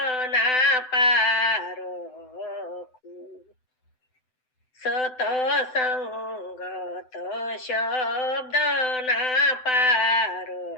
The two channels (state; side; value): late; right; 7.9 ms